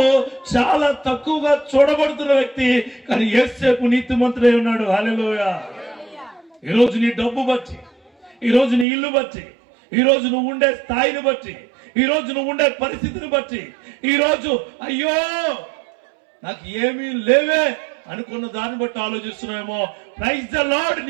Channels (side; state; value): left; drops out; at 8.8 s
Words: చాలా తక్కువగా చూడబడుతున్న వ్యక్తి. కానీ యేసేపు నీతిమంతుడై ఉన్నాడు. హల్లెలూయా. ఈరోజు నీ డబ్బు బట్టి, ఈరోజు నీ ఇల్లు బట్టి, ఈరోజు నువ్వు ఉండే స్థాయిని బట్టి, ఈరోజు నువ్వు ఉండే పరిస్థితిని బట్టి, ఈరోజు అయ్యో నాకు ఏమీ లేవే అనుకున్న దాన్ని బట్టి ఆలోచిస్తున్నామేమో. Praise the lord.